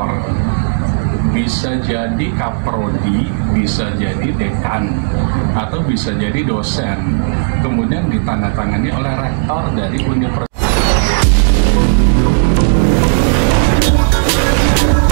bisa jadi kaprodi, bisa jadi dekan, atau bisa jadi dosen, kemudian ditandatangani oleh rektor dari universitas.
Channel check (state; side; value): silent; left; digital silence